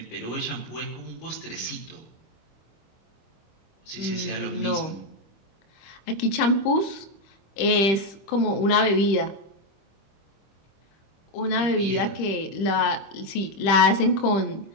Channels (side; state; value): right; late; 26 ms